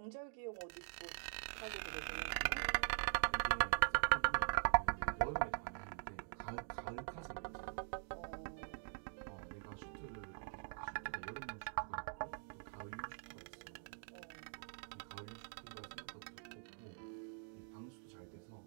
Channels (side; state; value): left; silent; digital silence